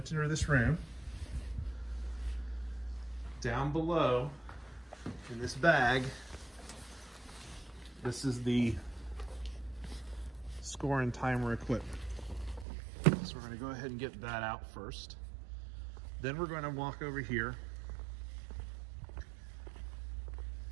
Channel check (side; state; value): left; drops out; at 12.7 s